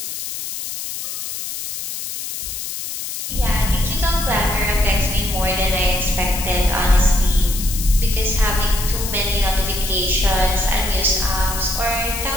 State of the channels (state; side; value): noise; left; hiss, 7 dB below the sound